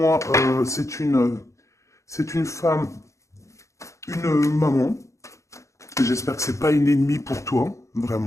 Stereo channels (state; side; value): late; right; 0.15 ms